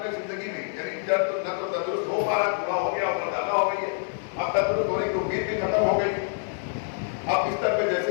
زندگی میں یعنی جب نہ تو تندرست ہو پا رہا, بوڑھا ہو گیا اور مردانہ ہو گئی ہے, اب تندرست ہونے کی امید بھی ختم ہو گئی, اب بستر پہ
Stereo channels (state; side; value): silent; right; digital silence